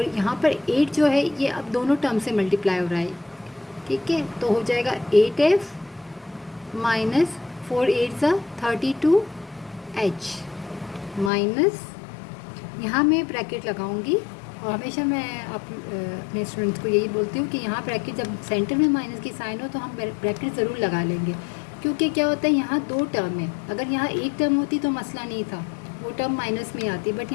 यहाँ पर 8 जो है ये अब दोनों टर्म से मल्टीप्लाई हो रहा है, ठीक है। तो हो जाएगा 8f माइनस 4 8 ज़ा 32h माइनस, यहाँ मैं ब्रैकेट लगाऊंगी और हमेशा मैं अपने स्टूडेंट्स को यही बोलती हूँ कि यहाँ ब्रैकेट जब सेंटर में माइनस की साइन हो तो हम ब्रैकेट ज़रूर लगा लेंगे, क्योंकि क्या होता है यहाँ दो टर्म है। अगर यहाँ एक टर्म होती तो मसला नहीं था, वो टर्म माइनस में आती, बट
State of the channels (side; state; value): right; drops out; at 11.3 s